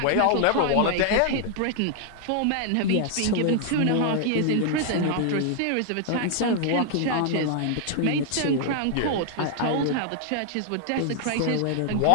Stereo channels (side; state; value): both; different; correlation 0.00